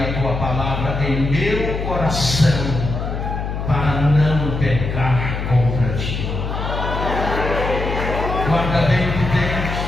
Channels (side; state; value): left; noise; hum, 4 dB below the sound